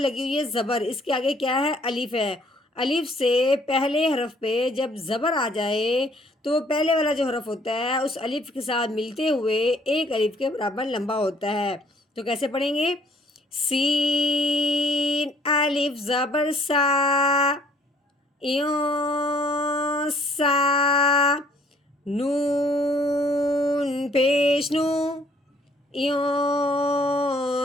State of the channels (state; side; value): normal; both; correlation 0.61